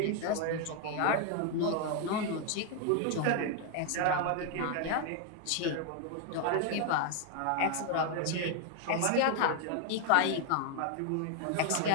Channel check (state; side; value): different; both; correlation 0.00